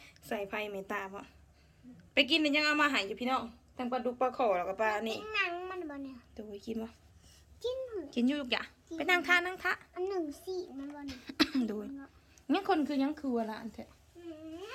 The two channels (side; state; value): both; identical; correlation 1.00